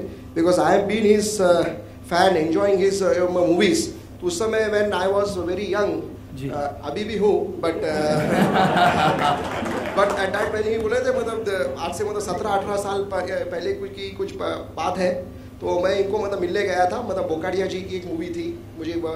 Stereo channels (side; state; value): both; identical; correlation 1.00